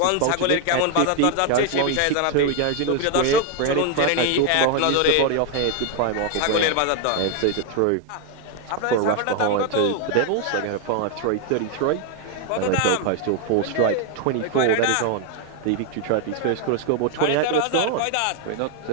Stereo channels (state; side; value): different; both; correlation 0.01